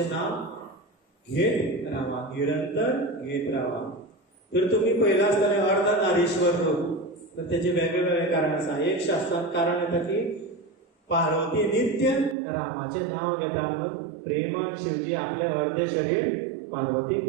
नाव घेत रावा, निरंतर घेत रावा. तर तुम्ही पहिला असताना अर्धनारीश्वर लोक, तर त्याचे वेगवेगळे कारण आसा. एक शास्त्रात कारण येता की पार्वती नित्य रामाचे नाव घेता म्हणून प्रेमान शिवजी आपले अर्धे शरीर पार्वतीक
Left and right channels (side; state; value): left; drops out; at 12.4 s